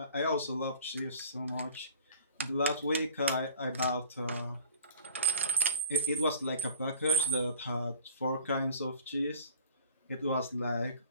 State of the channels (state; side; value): inverted; both; correlation -0.45